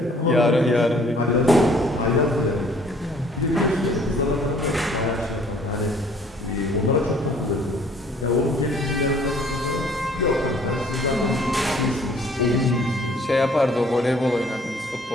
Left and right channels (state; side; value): normal; both; correlation 0.57